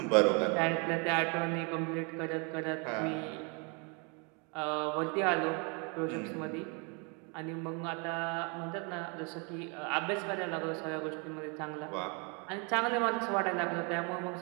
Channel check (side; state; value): left; quieter; 33.4 dB